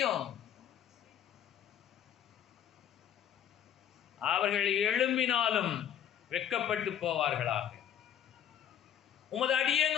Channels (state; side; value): quieter; right; 9.7 dB